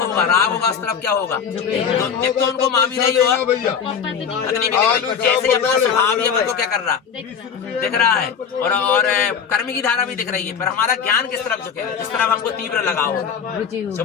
होगा, राग होगा, उस तरफ क्या होगा, एक तो उनको माँ भी नहीं होगा, पत्नी भी नहीं। जैसे अपना स्वभाव ये को क्या कर रहा, दिख रहा है, और कर्म की धारा भी दिख रही है, पर हमारा ज्ञान किस तरफ झुकेगा, जिस तरफ हमको तीव्र लगाव होगा।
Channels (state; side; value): quieter; right; 7.1 dB